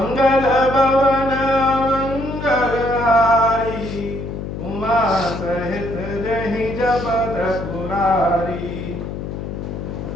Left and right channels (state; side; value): noise; left; hum, 7 dB below the sound